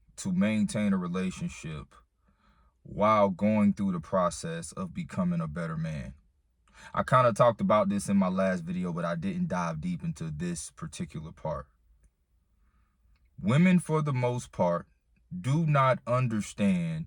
to maintain a relationship while going through the process of becoming a better man. I kind of talked about this in my last video, but I didn't dive deep into this particular part. Women, for the most part, do not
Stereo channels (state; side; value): identical; both; correlation 1.00